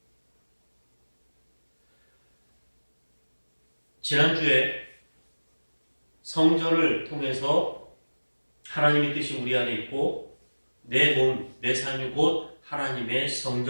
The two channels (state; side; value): inverted; both; correlation -1.00